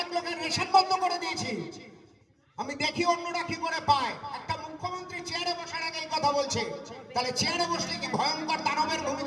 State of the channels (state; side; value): identical; both; correlation 1.00